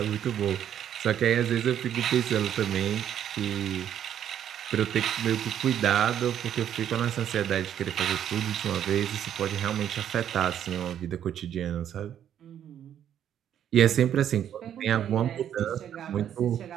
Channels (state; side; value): quieter; left; 10.0 dB